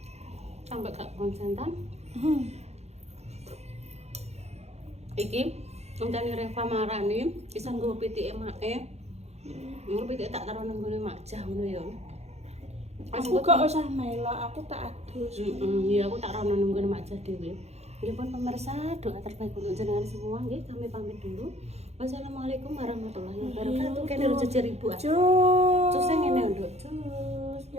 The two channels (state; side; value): late; left; 0.31 ms